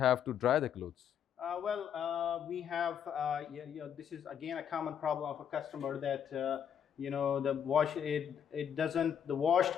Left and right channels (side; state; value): right; quieter; 8.6 dB